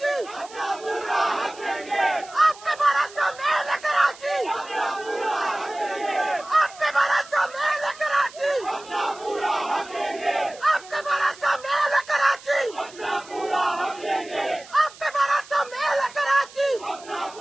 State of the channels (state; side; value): noise; right; hiss, 20 dB below the sound